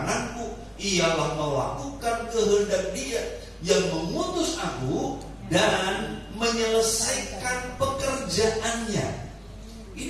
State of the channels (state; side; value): identical; both; correlation 1.00